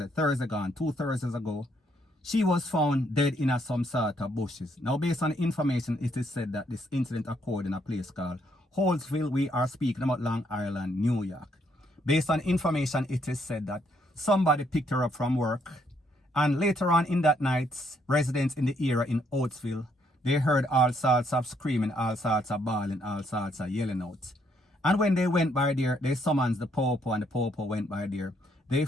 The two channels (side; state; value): both; normal; correlation 0.71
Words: gone, 2 Thursdays ago, she was found dead in some sort of bushes. Now, based on the information, it is said that this incident occurred in a place called Holtzville. We are speaking about Long Island, New York. Based on information, it is said that somebody picked her up from work, and later on in that night, residents in the area in Holtzville, they heard all sorts of screaming, all sorts of bawling, all sorts of yelling out. And when they went by there, they summoned the popo, and the popo went by there. They